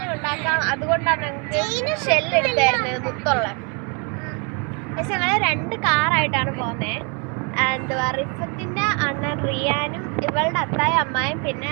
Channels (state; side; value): quieter; left; 35.0 dB